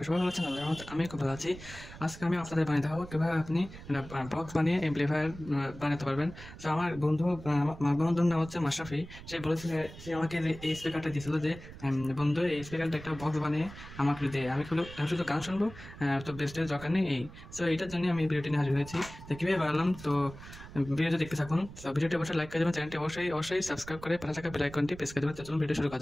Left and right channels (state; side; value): noise; right; rumble, 15 dB below the sound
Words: সবাই ভালো আছেন। আল্লাহর রহমতে আমি খুব ভালো আছি। আজকে আমি আপনাদের বানিয়ে দেখাবো কীভাবে আপনি বক্স বানিয়ে এমপ্লিফায়ার বানাতে পারবেন। তো আমার বন্ধুর নাম হচ্ছে মাশরাফি। সে আমাকে এই স্পিকারটা দিয়েছিল যে বন্ধু এই স্পিকারটা একটা বক্স বানিয়ে আমাকে দে। আমি শুধু গান শুনবো, তো বেস্টের দরকার নেই এই। সো এইটার জন্য আমি ভিডিওটি নিয়ে হাজির হয়েছি। তো কীভাবে বানালাম, তো ভিডিওটি দেখতে থাকুন। তো ভিডিওটি অবশ্যই লাইক করে দেবেন, চ্যানেলটি অবশ্যই সাবস্ক্রাইব করে পাশে থাকা বেল আইকনটি প্রেস করে দেবেন। তো চলুন ভিডিও শুরু করা